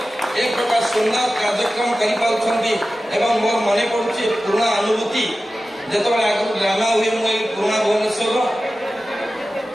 ଏକ ପ୍ରକାର ସୁନ୍ଦର କାର୍ଯ୍ୟକ୍ରମ କରିପାରୁଛନ୍ତି। ଏବଂ ମୋର ମନେ ପଡୁଛି ପୁରୁଣା ଅନୁଭୂତି, ଯେତେବେଳେ ଆଗରୁ ଡ୍ରାମା ହୁଏ, ମୁଁ ଏଇ ପୁରୁଣା ଭୁବନେଶ୍ୱରର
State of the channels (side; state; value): both; normal; correlation 0.95